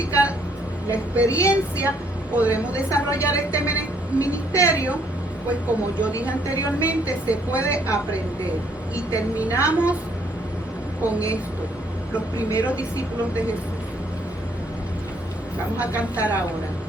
la experiencia, podremos desarrollar este ministerio, pues como yo dije anteriormente, se puede aprender. Y terminamos con esto, los primeros discípulos de Jesús. Vamos a cantar ahora.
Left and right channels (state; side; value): normal; both; correlation 0.66